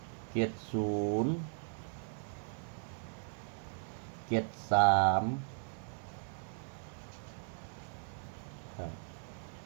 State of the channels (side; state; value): left; silent; 53 dB below the other